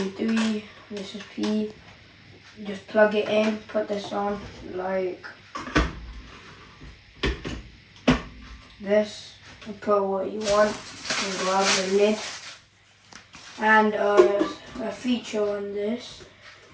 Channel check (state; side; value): identical; both; correlation 1.00